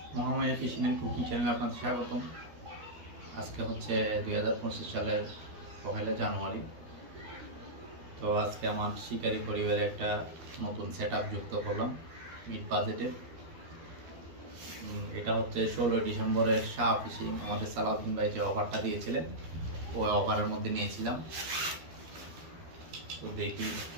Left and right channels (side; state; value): left; late; 13 ms